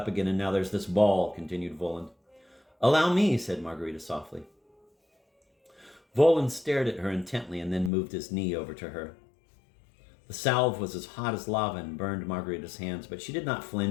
again and now there's this ball, continued Voland. Allow me, said Margarita softly. Voland stared at her intently and then moved his knee over to her. The salve was as hot as lava and burned Margarita's hands, but she did not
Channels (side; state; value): right; drops out; at 7.9 s